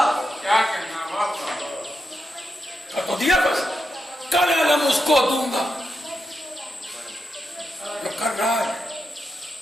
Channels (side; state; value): both; normal; correlation 0.86